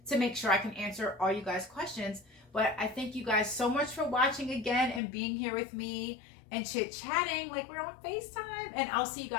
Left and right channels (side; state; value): right; drops out; at 5.0 s